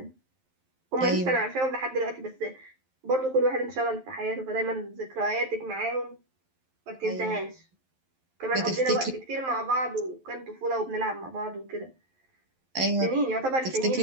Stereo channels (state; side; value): late; left; 11 ms